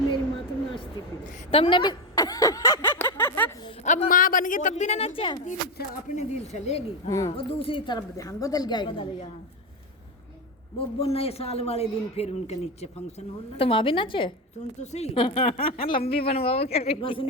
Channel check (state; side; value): normal; both; correlation 0.12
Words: माँ तो नाचती थी। तुमने भी अब माँ बन गई तब भी ना नाचा। अपने दिल चलेगी और दूसरी तरफ ध्यान बदल गया। वो नए साल वाले दिन फिर उनके नीचे फंक्शन हो रहा। तो माँ भी नाचे। सुन तो सही लंबी बनवाओ क्या? बस